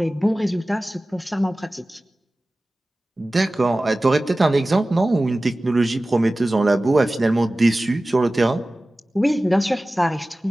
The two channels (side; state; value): both; normal; correlation 0.97